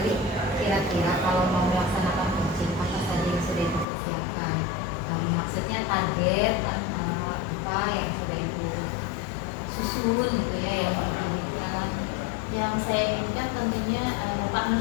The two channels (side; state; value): right; drops out; at 3.9 s